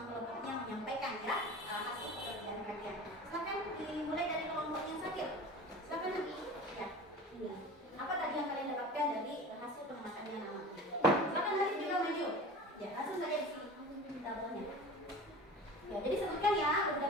kelompoknya menyampaikan ya hasil pekerjaan kalian. Silakan dimulai dari kelompok yang Sakir. Silakan lagi. Ya. Ini. Apa tadi yang kalian dapatkan dari hasil pengamatannya nama? Silakan lagi juga maju. Ya, langsung saja di tabelnya. Ya, jadi sebutkan ya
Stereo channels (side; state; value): both; normal; correlation 0.37